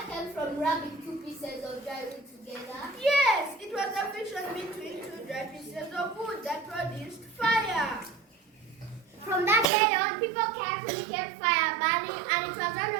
came from rubbing 2 pieces of dry wood together? Yes, it was a friction between 2 dry pieces of wood that produced fire. From that day on, people carefully kept fire burning, and it was one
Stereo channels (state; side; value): drops out; left; at 9.7 s